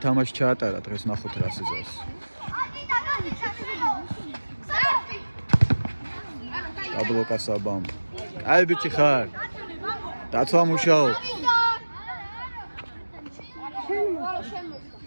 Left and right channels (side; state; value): both; inverted; correlation -1.00